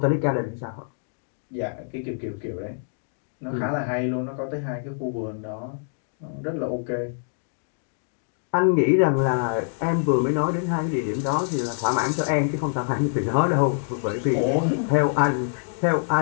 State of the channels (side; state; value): right; silent; digital silence